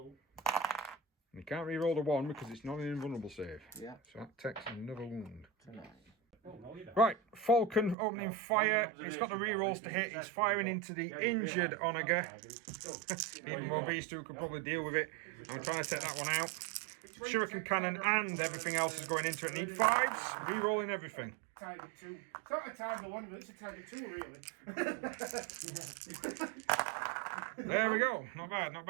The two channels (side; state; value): left; drops out; at 8.0 s